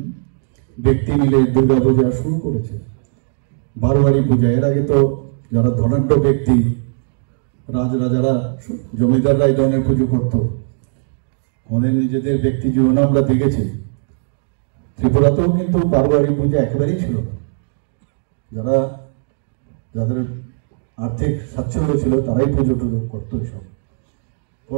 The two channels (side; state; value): left; silent; digital silence